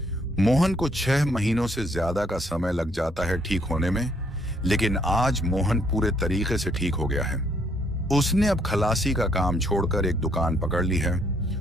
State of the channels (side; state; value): both; normal; correlation 0.68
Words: मोहन को 6 महीनों से ज्यादा का समय लग जाता है ठीक होने में, लेकिन आज मोहन पूरे तरीके से ठीक हो गया है। उसने अब खलासी का काम छोड़कर एक दुकान पकड़ ली है,